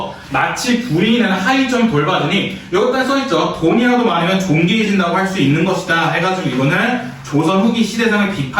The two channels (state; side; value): identical; both; correlation 1.00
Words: 마치 부인은 하이점 돌봐주니 여기다 써있죠. 돈이라도 많으면 존귀해진다고 할 수 있는 것이다 해가지고 이거는 조선 후기 시대상을